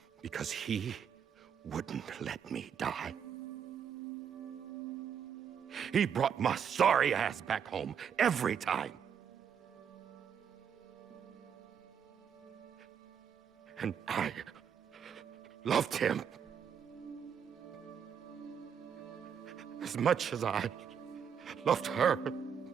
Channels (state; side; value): quieter; left; 7.6 dB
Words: Because he wouldn't let me die. He brought my sorry ass back home every time. And I loved him as much as I loved her.